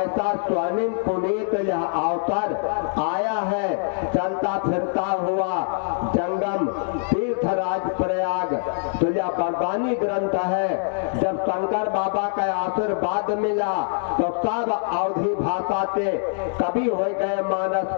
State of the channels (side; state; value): right; silent; digital silence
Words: स्वर्णिम पुनीत यह अवसर आया है। चलता फिरता हुआ जंगम तीर्थराज प्रयाग तो यह बरबानी ग्रंथ है। जब शंकर बाबा का आशीर्वाद मिला तो सब अवधि भाषा के कवि हो गए